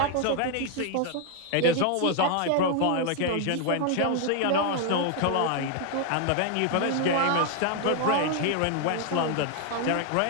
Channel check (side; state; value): both; different; correlation 0.00